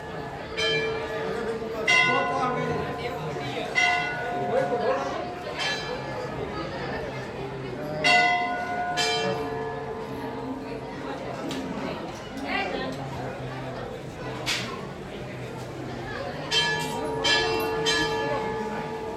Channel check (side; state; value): both; identical; correlation 1.00